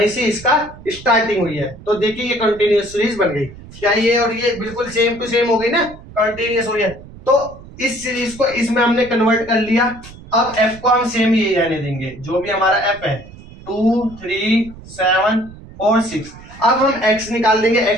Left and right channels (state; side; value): noise; right; rumble, 18 dB below the sound